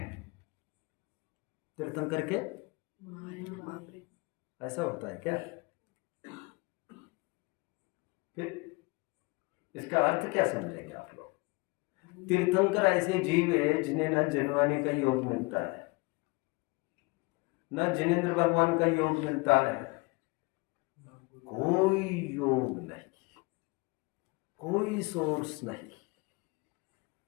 तीर्थंकर के ऐसा होता है क्या? फिर इसका अर्थ क्या समझेंगे आप लोग? तीर्थंकर ऐसे जीव है जिन्हें ना जनवाने का योग मिलता है, ना जिनेंद्र भगवान का योग मिलता है, कोई योग नहीं, कोई सोर्स नहीं।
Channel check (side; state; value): right; quieter; 26.8 dB